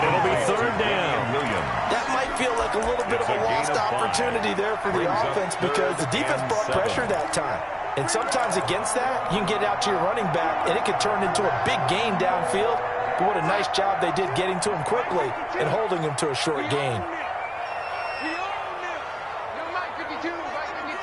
it'll be 3rd down. That might feel like a little bit of a lost opportunity there for the offense because the defense brought pressure that time. And sometimes against that, you can get out to your running back, and it can turn into a big gain downfield. But what a nice job they did getting to him quickly and holding him to a short gain. We own them. No, Mike 52, Mike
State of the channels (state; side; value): identical; both; correlation 1.00